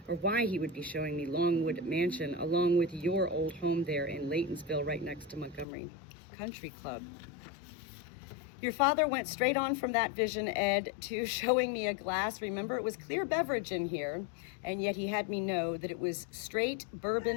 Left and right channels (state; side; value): drops out; right; at 5.7 s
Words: or why he would be showing me Longwood Mansion along with your old home there in Laytonsville, right next to Montgomery Country Club. Your father went straight on from that vision, Ed, to showing me a glass. Remember, it was clear beverage in here, and yet he had me know that it was straight